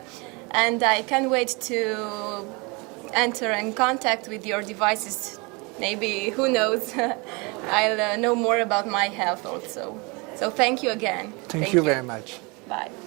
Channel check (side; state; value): left; quieter; 28.6 dB